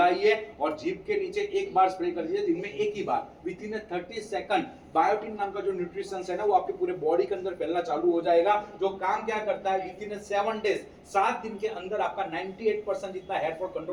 और जीभ के नीचे 1 बार स्प्रे कर दीजिए, दिन में 1 ही बार। विद इन 30 सेकंड बायोटिन नाम का जो न्यूट्रिशन है ना, वो आपके पूरे बॉडी के अंदर फैलना चालू हो जाएगा। जो काम क्या करता है, विद इन 7 डेज, 7 दिन के अंदर आपका 98% जितना हेयर फॉल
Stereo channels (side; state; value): both; identical; correlation 1.00